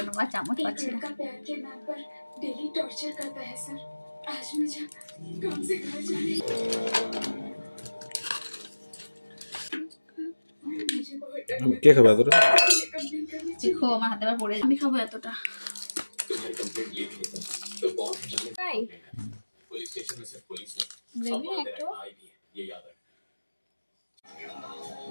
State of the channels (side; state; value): both; inverted; correlation -1.00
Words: নেবো, চামচ পাচ্ছি না। কে খাবে এতটা? দেখো আমার হাতে আবার পড়ে, আমি খাবো এতটা।